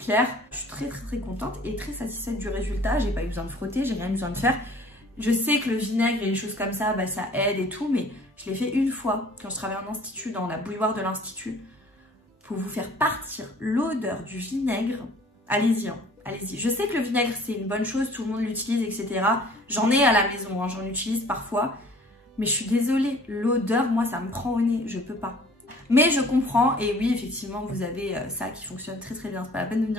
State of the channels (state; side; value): normal; both; correlation 0.51